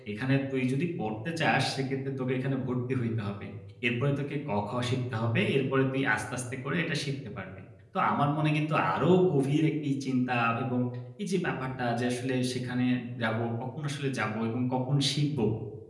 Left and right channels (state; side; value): identical; both; correlation 1.00